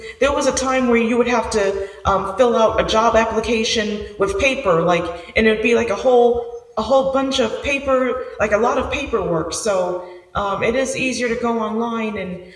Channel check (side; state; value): both; identical; correlation 1.00